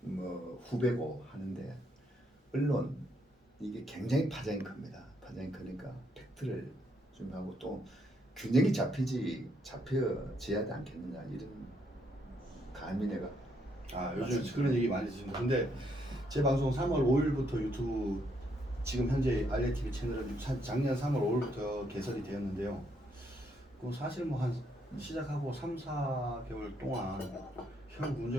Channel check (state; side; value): normal; both; correlation 0.74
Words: 후배고 하는데 언론 이게 굉장히 파장이 큽니다. 파장이 크니까 팩트를 준비하고 또 균형이 잡혀져야 하지 않겠느냐 이런 감히 내가 요즘 그런 얘기 많이 드십니다. 근데 제 방송 3월 5일부터 유튜브 지금 현재 알리티비 채널은 작년 3월 5일부터 개설이 되었는데요. 그 사실 뭐 한 시작하고 3, 4개월 동안 현